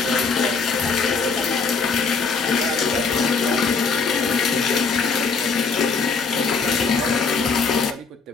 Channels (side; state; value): right; quieter; 4.9 dB